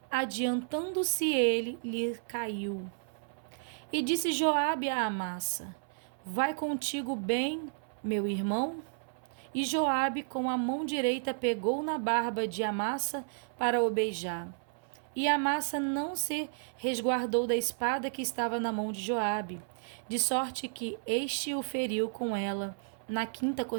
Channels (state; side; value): silent; left; 56 dB below the other